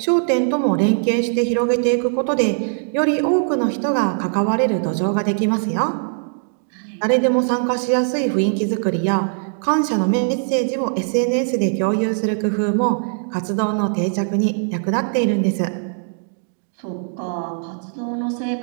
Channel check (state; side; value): silent; left; 65 dB below the other